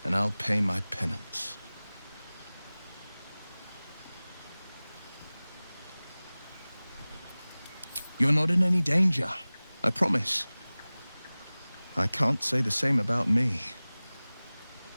and I'll pay my penance. You're not in any danger, I promise. I can't say the same about me.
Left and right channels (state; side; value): inverted; both; correlation -0.99